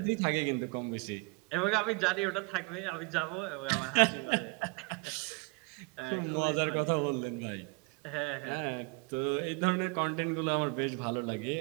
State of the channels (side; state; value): left; quieter; 30.1 dB